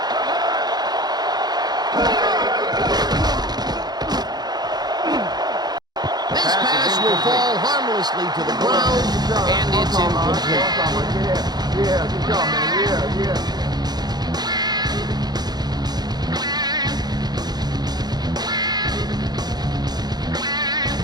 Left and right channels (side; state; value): left; late; 0.20 ms